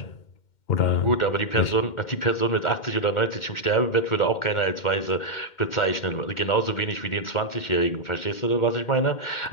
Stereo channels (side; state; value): right; late; 2.1 ms